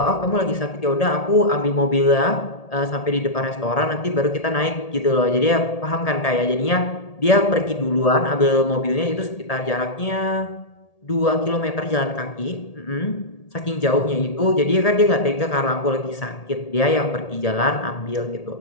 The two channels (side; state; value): right; late; 1.8 ms